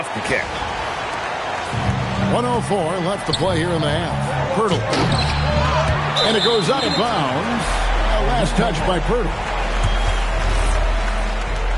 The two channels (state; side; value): identical; both; correlation 1.00